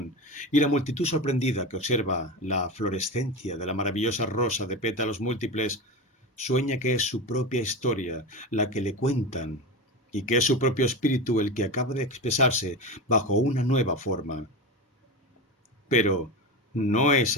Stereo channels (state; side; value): normal; both; correlation 0.22